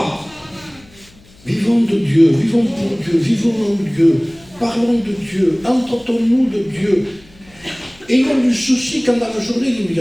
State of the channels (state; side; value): noise; left; hum, 27 dB below the sound